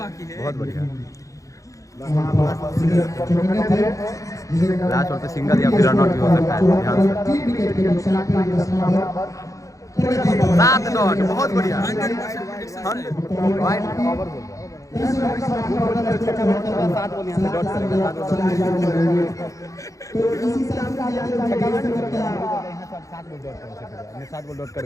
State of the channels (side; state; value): right; late; 0.16 ms